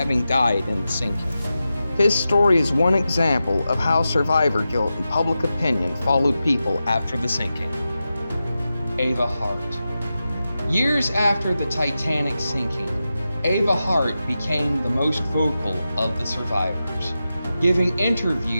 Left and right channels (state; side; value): inverted; both; correlation -0.91